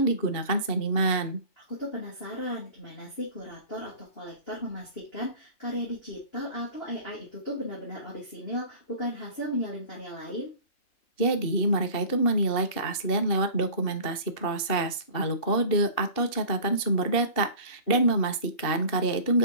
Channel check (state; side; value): late; right; 2.8 ms